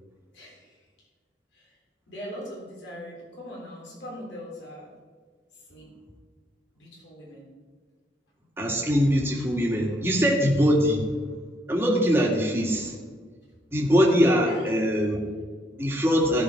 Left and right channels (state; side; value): normal; both; correlation 0.72